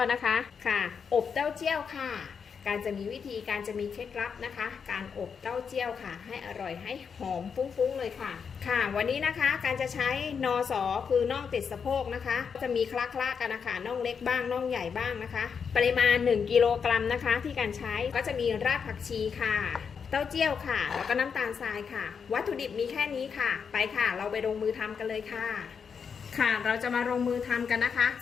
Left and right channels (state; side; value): quieter; right; 6.4 dB